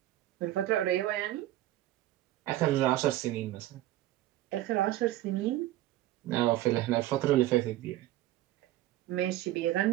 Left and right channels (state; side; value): quieter; left; 14.9 dB